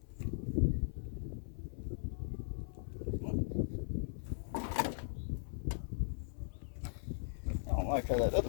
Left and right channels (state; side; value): silent; right; 52 dB below the other